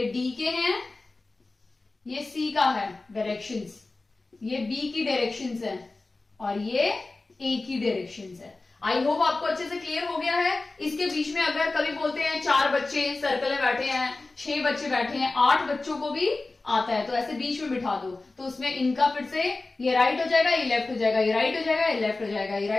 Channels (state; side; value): quieter; right; 3.3 dB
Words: डी के हैं, ये सी का है डायरेक्शंस, ये बी की डायरेक्शंस है और ये ए की डायरेक्शंस है। आई होप आपको अच्छे से क्लियर हो गया है। इसके बीच में अगर कभी बोलते हैं 4 बच्चे सर्कल में बैठे हैं, 6 बच्चे बैठे हैं, 8 बच्चों को भी आता है, तो ऐसे बीच में बिठा दो, तो उसमें इनका फिर से ये राइट हो जाएगा, ये लेफ्ट हो जाएगा, ये राइट हो जाएगा, ये लेफ्ट हो जाएगा, ये